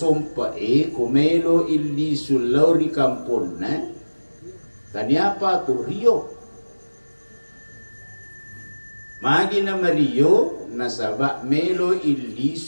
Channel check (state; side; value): inverted; both; correlation -1.00